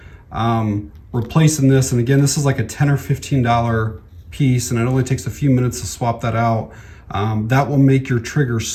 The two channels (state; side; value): identical; both; correlation 1.00